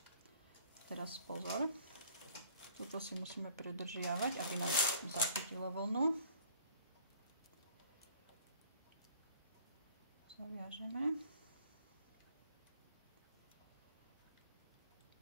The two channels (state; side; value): inverted; both; correlation -0.55